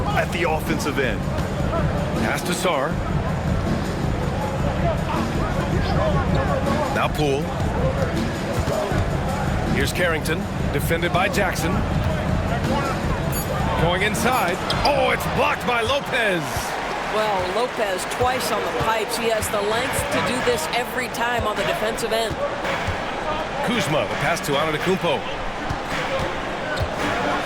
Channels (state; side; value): identical; both; correlation 1.00